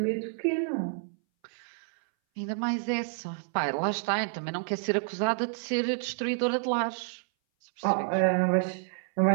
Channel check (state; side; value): silent; left; 58 dB below the other